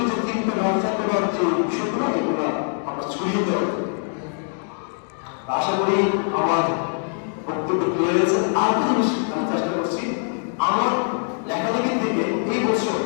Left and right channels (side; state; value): right; silent; 57 dB below the other